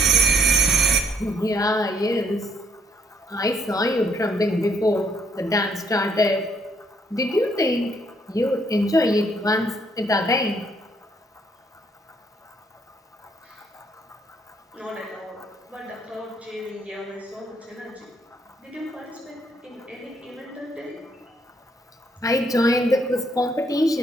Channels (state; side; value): normal; both; correlation 0.70